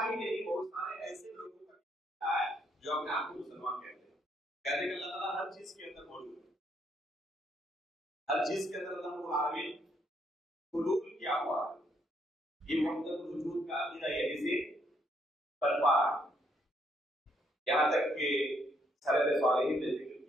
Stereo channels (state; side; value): normal; both; correlation 0.72